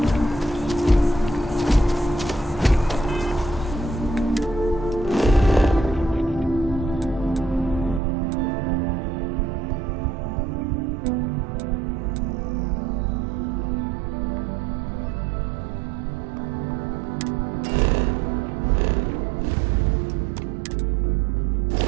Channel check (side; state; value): left; drops out; at 8.0 s